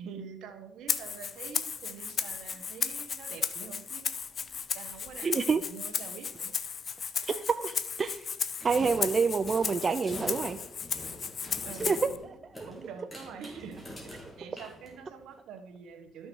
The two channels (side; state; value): both; normal; correlation 0.80